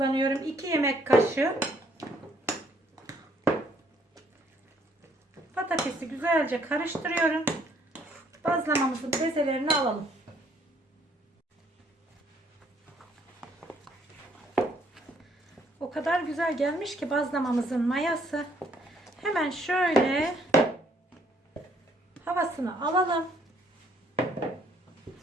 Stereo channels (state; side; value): normal; both; correlation 0.65